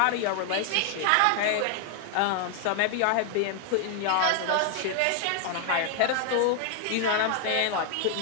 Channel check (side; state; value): both; different; correlation 0.00